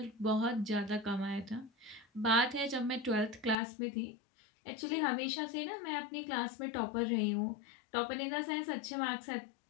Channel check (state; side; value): drops out; right; at 3.6 s